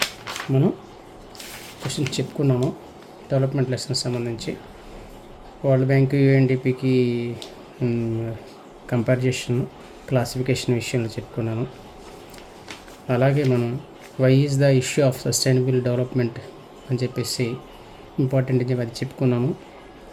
మనం క్వశ్చన్స్ చెప్పుకున్నాము. డెవలప్మెంట్ లెసన్కి సంబంధించి వరల్డ్ బ్యాంక్ యుఎన్డిపికి కంపారిజేషన్, క్లాసిఫికేషన్ విషయంలో చెప్పుకున్నాము. అలాగే మనం why is the issue of sustainable development అని చెప్పేసి ఇంపార్టెంట్ అని చెప్పి అది చెప్పుకున్నాము.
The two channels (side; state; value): both; identical; correlation 1.00